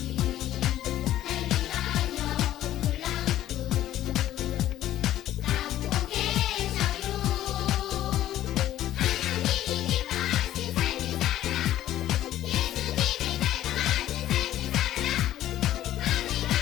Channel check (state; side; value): quieter; right; 13.1 dB